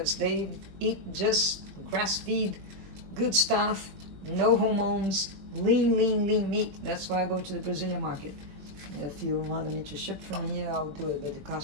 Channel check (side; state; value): left; late; 21 ms